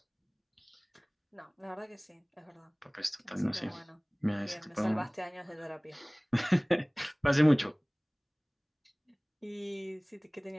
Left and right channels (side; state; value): both; identical; correlation 1.00